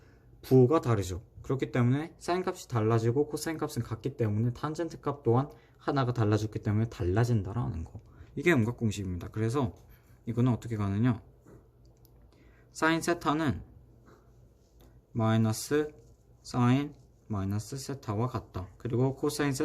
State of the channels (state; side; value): identical; both; correlation 1.00